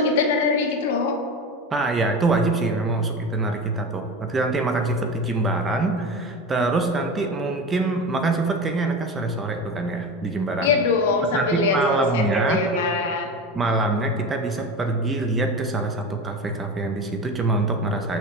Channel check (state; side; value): normal; both; correlation 0.26